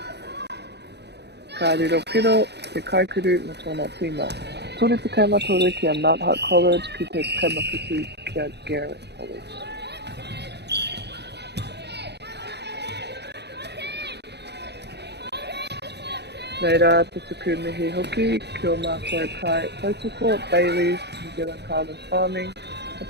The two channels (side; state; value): left; late; 0.49 ms